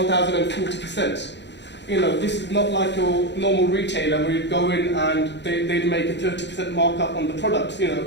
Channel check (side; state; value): right; late; 0.51 ms